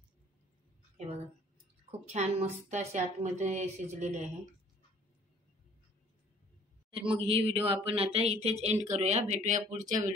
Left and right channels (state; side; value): normal; both; correlation 0.55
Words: हे बघा खूप छान मस्त अशी आतमध्ये शिजलेली आहे. तर मग ही व्हिडिओ आपण आता इथेच एंड करूया. भेटूया पुढच्या